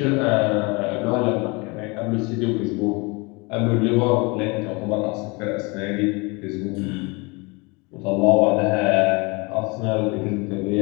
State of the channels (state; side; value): quieter; right; 27.9 dB